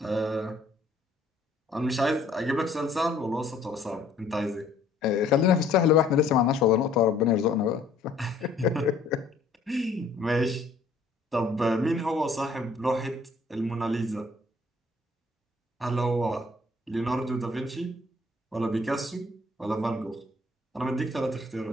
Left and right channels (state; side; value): quieter; right; 3.3 dB